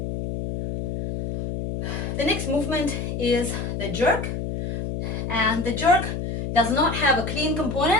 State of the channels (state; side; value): noise; left; hum, 4 dB below the sound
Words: The next movement is the jerk, and the jerk does not have a clean